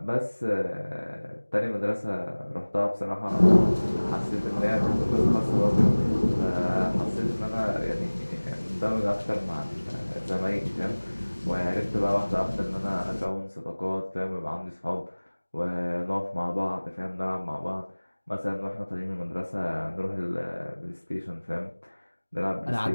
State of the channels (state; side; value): inverted; both; correlation -1.00